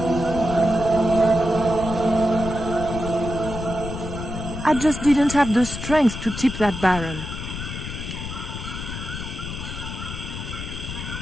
I just didn't have the strength to tip that barrel.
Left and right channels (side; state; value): left; noise; rumble, 7 dB below the sound